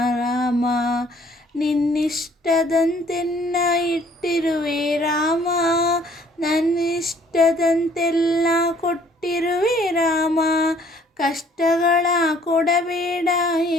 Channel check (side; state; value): both; normal; correlation 0.59